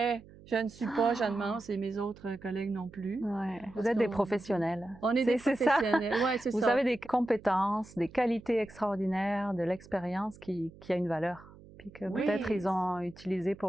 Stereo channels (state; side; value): noise; right; hum, 21 dB below the sound